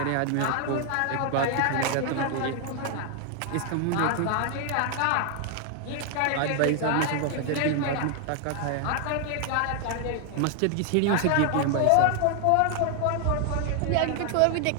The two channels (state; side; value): different; both; correlation 0.00